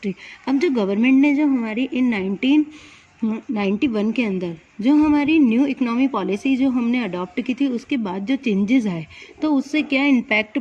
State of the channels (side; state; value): both; identical; correlation 1.00